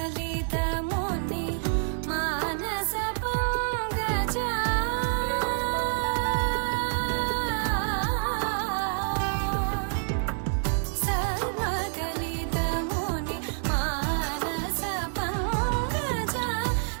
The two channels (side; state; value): left; silent; 56 dB below the other